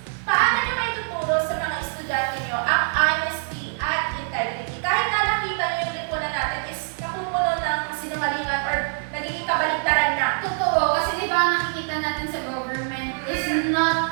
paano nyo may tuturo sa mga estudyante nyo ang honesty at integrity? Kahit na nakita nyo yung lipunan natin is napupuno ng sinungalingan or nagiging kabaligtaran na. Totoo, kasi di ba nakikita natin sa government is not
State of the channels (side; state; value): left; silent; 60 dB below the other